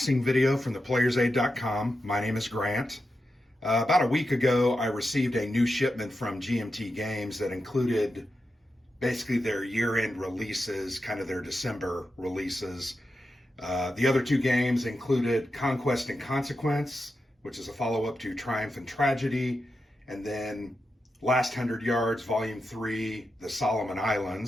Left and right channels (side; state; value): both; normal; correlation 0.89